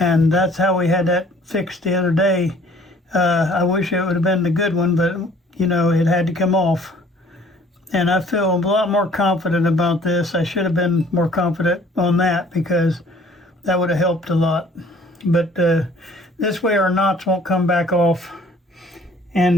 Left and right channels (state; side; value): normal; both; correlation 0.55